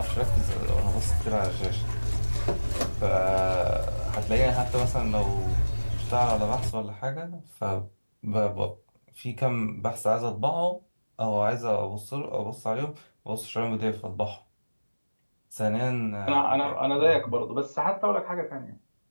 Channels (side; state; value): both; inverted; correlation -1.00